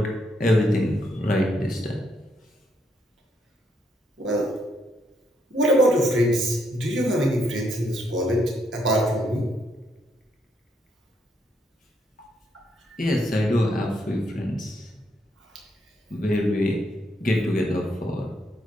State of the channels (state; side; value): normal; both; correlation 0.75